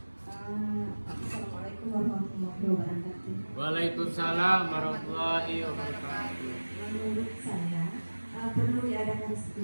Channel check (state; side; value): inverted; both; correlation -1.00